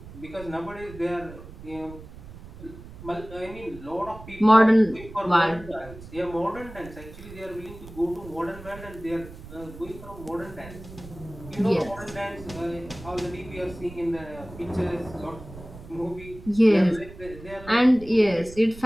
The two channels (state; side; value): noise; right; rumble, 16 dB below the sound